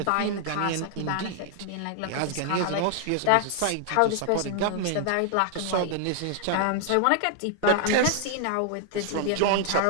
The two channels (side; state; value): both; different; correlation 0.00